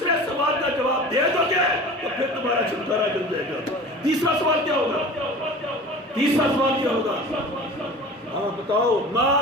سوال کا جواب دے دو گے تو پھر تمہارا چھٹکارا مل جائے گا۔ تیسرا سوال کیا ہوگا؟ تیسرا سوال کیا ہوگا؟ ہاں بتاؤ، ما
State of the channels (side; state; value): both; normal; correlation 0.39